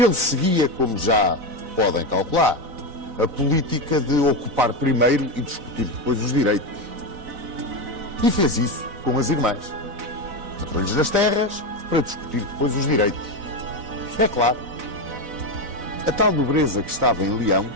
seguia, como já podem calcular, a política de ocupar primeiro e discutir depois os direitos. E fez isso com as irmãs. Entrou-lhes nas terras para discutir depois os direitos. É claro, a tal nobreza que estava em Leão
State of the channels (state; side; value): late; left; 4.0 ms